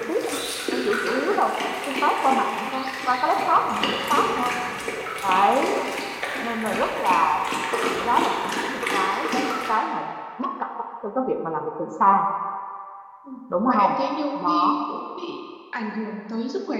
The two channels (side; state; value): both; identical; correlation 1.00